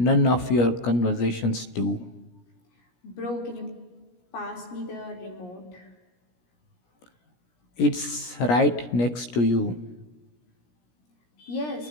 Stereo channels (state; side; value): late; right; 17 ms